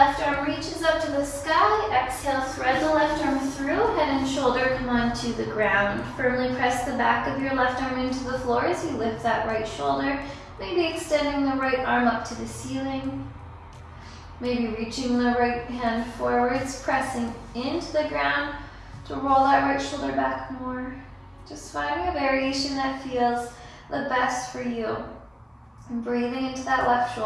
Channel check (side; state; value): both; identical; correlation 1.00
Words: arm reaches up to the sky. Exhale, thread the left arm through. Head and shoulder come onto the ground. Firmly press the back of your left arm into the floor as you lift that right shoulder. Maybe extending the right arm up to the ceiling. Maybe reaching the right hand forwards, pressing into the ground to roll that right shoulder back more. Just finding a variation that feels the best for you. And breathing into that left